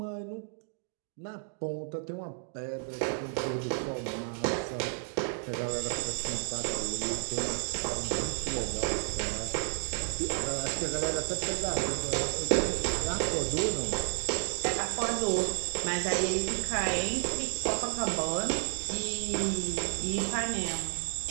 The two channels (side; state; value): left; silent; digital silence